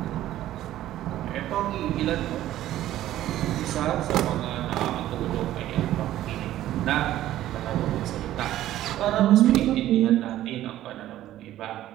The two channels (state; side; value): quieter; left; 13.5 dB